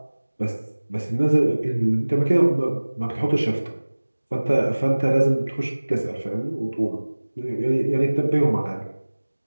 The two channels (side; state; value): both; inverted; correlation -1.00